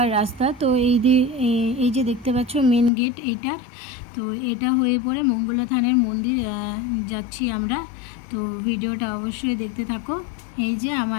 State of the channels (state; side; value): drops out; right; at 2.9 s